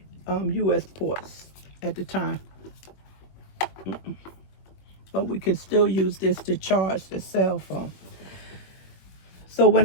US ports at the time. But we can still use this to charge the cell phone. So when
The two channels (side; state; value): right; late; 21 ms